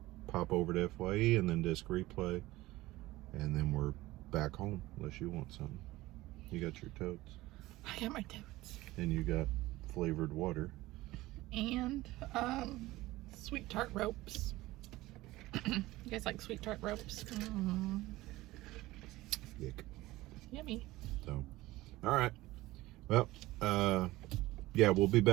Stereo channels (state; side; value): quieter; left; 18.2 dB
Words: pop over to FYE and then disc replay, and then we're back home. Unless you want something. You got your totes. I got my totes. And you got flavored water. And sweet tart ropes. You guys like sweet tart ropes? Yuck. Yummy. So, all right. Well, yeah, we'll be